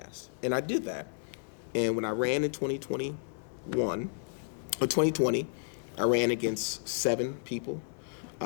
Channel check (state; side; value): silent; right; digital silence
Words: And I did that. And when I ran in 2020, I ran against 7 people,